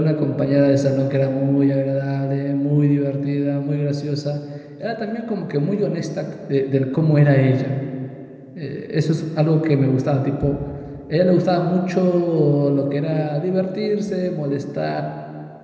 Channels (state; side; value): identical; both; correlation 1.00